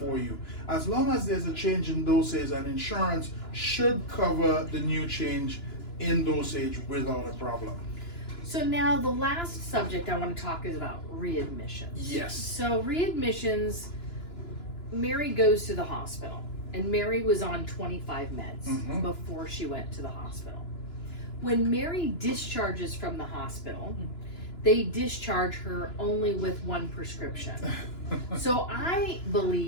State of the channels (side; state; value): right; late; 2.9 ms